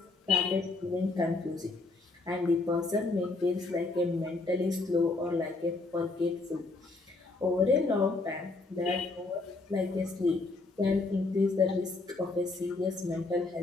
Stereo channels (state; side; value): quieter; right; 3.4 dB